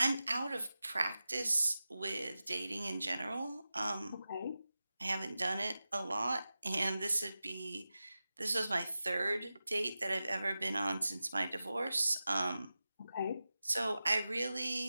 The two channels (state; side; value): inverted; both; correlation -0.94